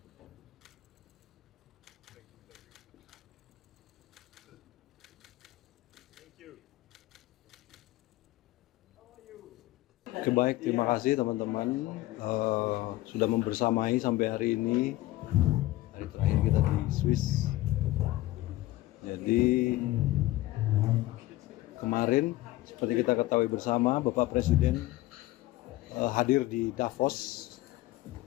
baik, terima kasih teman-teman sudah membersamai sampai hari ini, hari terakhir kita di Swiss. Jadi kemarin seperti kita ketahui bersama, Bapak Presiden hadir di Davos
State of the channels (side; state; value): right; quieter; 17.4 dB